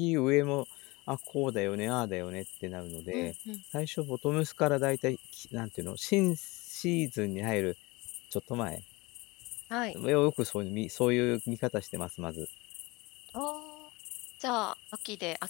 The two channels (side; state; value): right; quieter; 23.7 dB